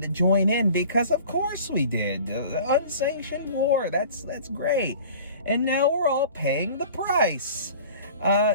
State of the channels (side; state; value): both; inverted; correlation -0.44